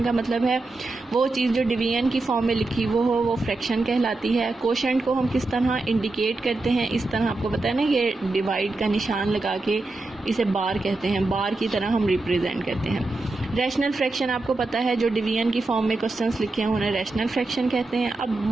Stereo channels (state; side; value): quieter; left; 3.2 dB